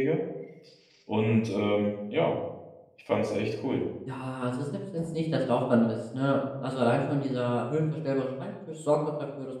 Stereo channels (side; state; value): both; identical; correlation 1.00